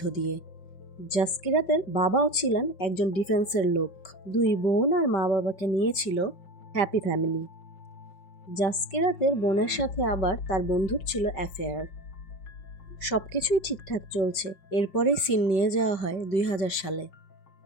দিয়ে। জাসকিরাতের বাবাও ছিলেন একজন ডিফেন্সের লোক। দুই বোন আর মা বাবাকে নিয়েছিল হ্যাপি ফ্যামিলি। জাসকিরাতের বোনের সাথে আবার তার বন্ধুর ছিল অ্যাফেয়ার। সব কিছুই ঠিকঠাক চলছে। এরপরেই সিন নিয়ে যাওয়া হয় 2000 সালে।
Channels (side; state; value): right; late; 5.2 ms